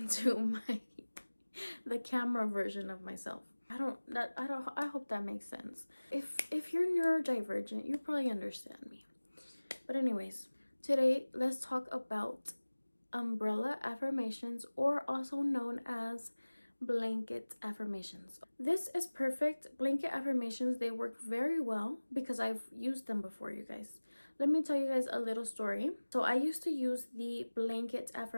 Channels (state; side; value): inverted; both; correlation -1.00